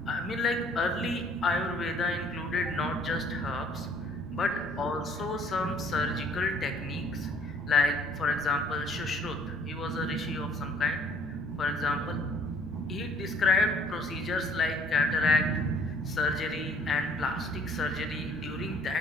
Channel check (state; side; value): normal; both; correlation 0.59